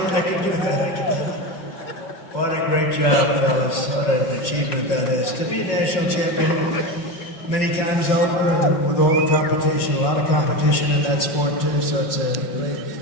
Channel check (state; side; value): late; right; 5.4 ms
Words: that can do that. What a great job, fellas. What an achievement that is. To be national champion many times over, and with all the competition, a lot of competition in that sport too, so it's a great